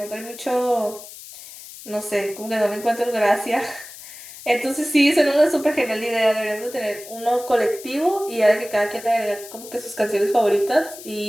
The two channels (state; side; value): noise; left; hiss, 15 dB below the sound